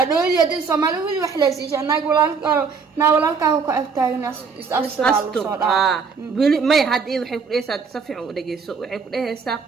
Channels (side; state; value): left; quieter; 5.4 dB